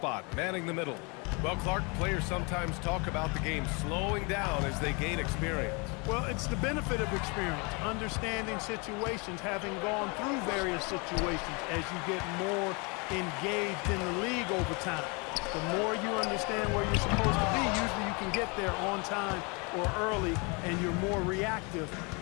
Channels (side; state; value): right; quieter; 30.6 dB